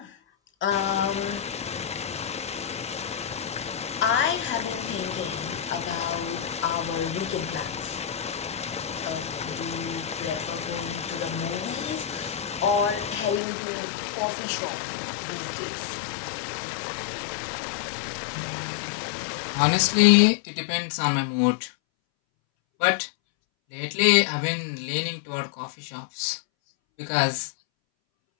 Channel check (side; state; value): right; drops out; at 13.4 s